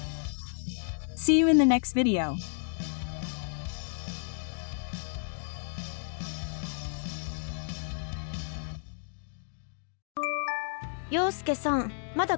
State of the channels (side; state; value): right; silent; digital silence